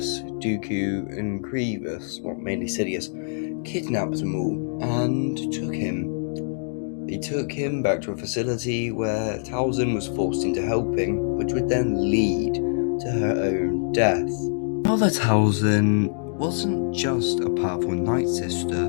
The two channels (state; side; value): silent; right; digital silence